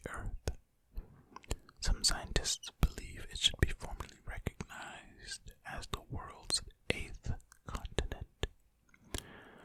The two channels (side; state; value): both; identical; correlation 1.00